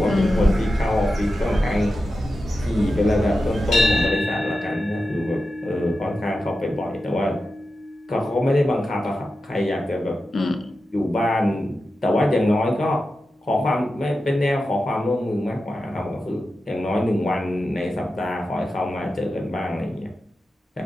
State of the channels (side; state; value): both; normal; correlation 0.91